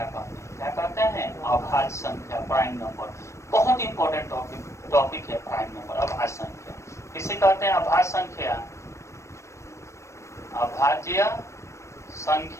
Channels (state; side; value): late; right; 0.14 ms